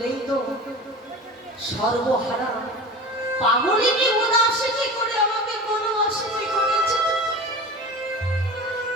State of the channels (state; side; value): normal; both; correlation 0.34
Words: তো সর্বহারা পাগলিনী উদাসিনী করে আমাকে কোনো অসিনী করেছে।